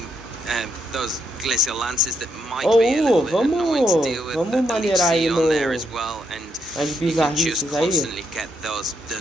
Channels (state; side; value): normal; both; correlation 0.77